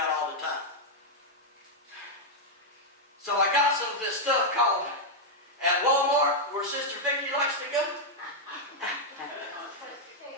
all the time. So I got some of this stuff called at Walmart where Sister Vicky likes to go.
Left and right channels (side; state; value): both; normal; correlation -0.02